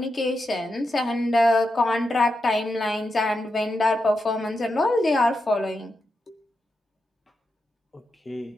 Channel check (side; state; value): both; normal; correlation 0.87